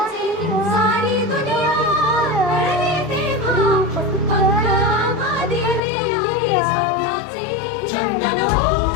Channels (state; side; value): drops out; right; at 5.8 s